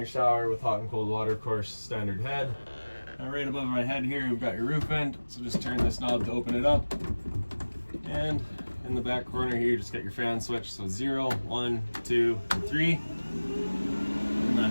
shower with hot and cold water, of course, standard head. Now right above my head here, we've got your roof vent. So just turn this knob to open it up. And in the back corner here, just get your fan switch. So 0, 1, 2, and 3. And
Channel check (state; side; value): inverted; both; correlation -1.00